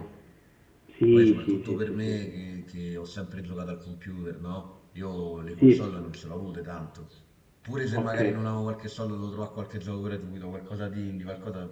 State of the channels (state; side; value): identical; both; correlation 1.00